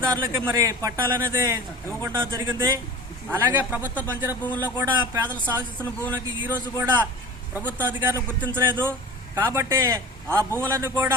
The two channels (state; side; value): normal; both; correlation 0.37